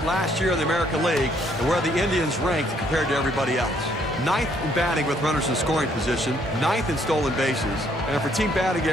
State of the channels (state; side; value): normal; both; correlation 0.67